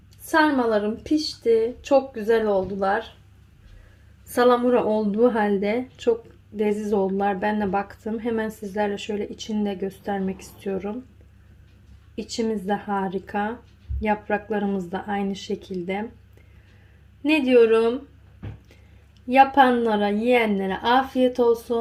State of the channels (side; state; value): both; identical; correlation 1.00